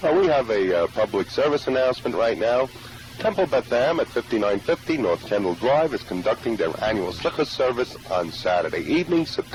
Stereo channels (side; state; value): both; identical; correlation 1.00